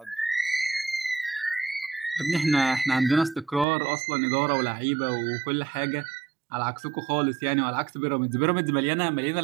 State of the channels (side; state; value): left; drops out; at 3.7 s